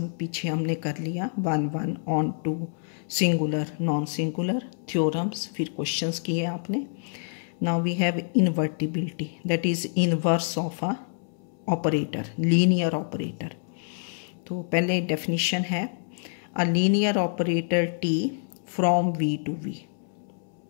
पीछे हमने कर लिया, 1 onto, singular non singular, theorems, फिर क्वेश्चंस किए आपने। Now we have invertibility, that is inverse of a operator, linear operator. तो पहले डेफिनेशन है a linear operator T from V to V.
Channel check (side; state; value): right; silent; 60 dB below the other